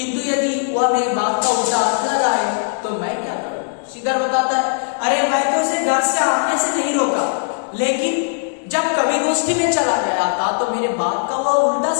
यदि वह मेरी बात का उल्टा अर्थ लगाए तो मैं क्या करूं. श्रीधर बताता है अरे मैं तो उसे घर से आने से नहीं रोका, लेकिन जब कवि गोष्ठी में चला गया था तो मेरे बात का वह उल्टा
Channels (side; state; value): right; silent; digital silence